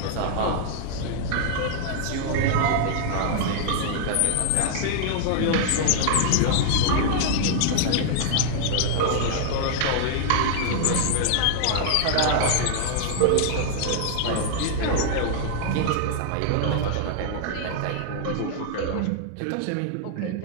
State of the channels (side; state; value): both; different; correlation -0.01